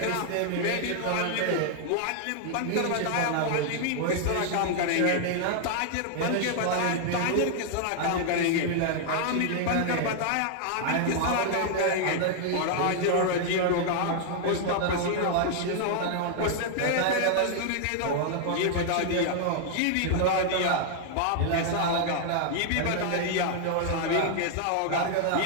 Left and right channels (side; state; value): both; different; correlation 0.00